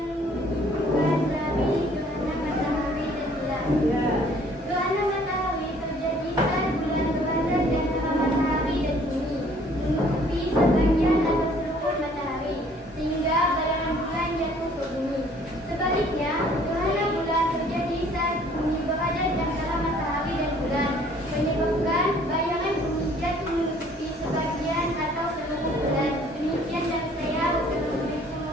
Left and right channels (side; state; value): both; normal; correlation 0.58